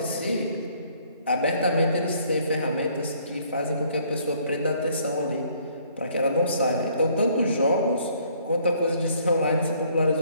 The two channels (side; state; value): both; inverted; correlation -0.62